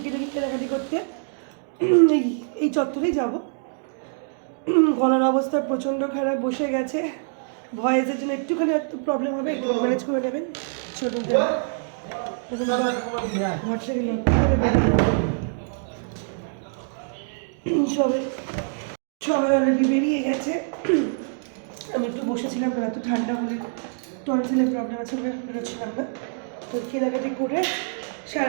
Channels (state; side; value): silent; left; digital silence